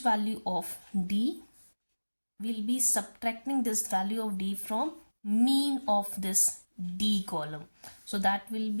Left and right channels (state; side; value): inverted; both; correlation -1.00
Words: of D, we'll be subtracting this value of D from mean of this D column. So that will